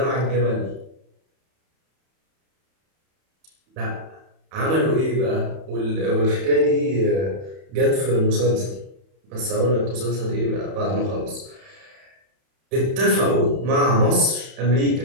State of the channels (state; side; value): late; left; 31 ms